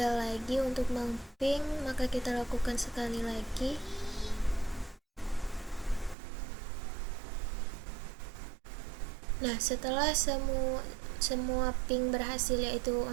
lagi untuk meng-ping, maka kita lakukan sekali lagi. Nah, setelah semua ping berhasil, yaitu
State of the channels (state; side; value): drops out; left; at 6.2 s